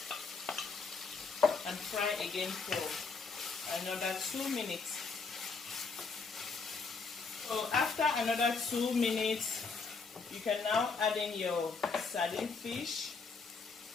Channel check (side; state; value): right; quieter; 4.6 dB